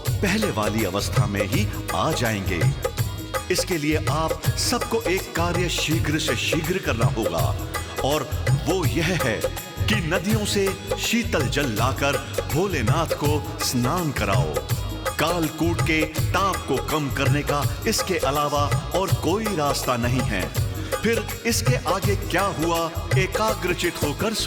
पहले वाली अवस्था में ही आ जाएंगे। इसके लिए आप सबको एक कार्य शीघ्र से शीघ्र करना होगा, और वो यह है कि नदियों से शीतल जल लाकर भोलेनाथ को स्नान कराओ। कालकूट के ताप को कम करने का इसके अलावा और कोई रास्ता नहीं है। फिर इसके आगे क्या हुआ, एकाग्रचित होकर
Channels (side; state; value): both; identical; correlation 1.00